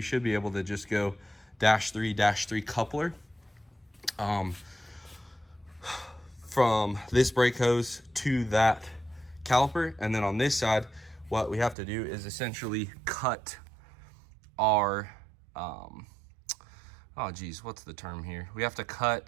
should be able to just go -3 coupler from this brake hose to that caliper. And then on this side, what we have to do is essentially cut our oh geez, what's the term here? We have to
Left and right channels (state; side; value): drops out; left; at 11.8 s